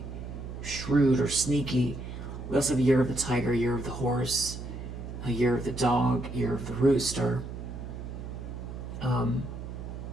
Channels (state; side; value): noise; right; hum, 9 dB below the sound